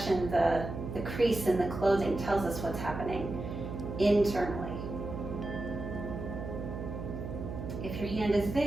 the crease in the clothing tells us what's happening internally. If your hand is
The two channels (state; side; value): noise; right; hum, 7 dB below the sound